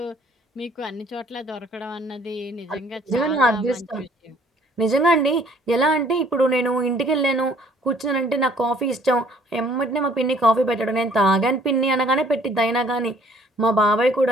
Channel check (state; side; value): normal; both; correlation 0.58